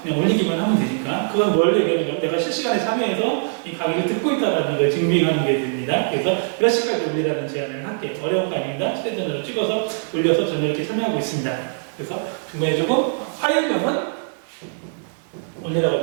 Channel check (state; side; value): silent; left; 64 dB below the other